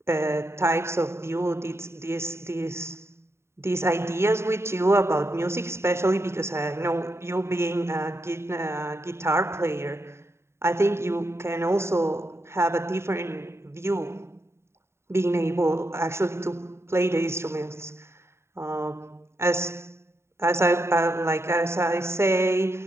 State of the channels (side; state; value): left; late; 0.13 ms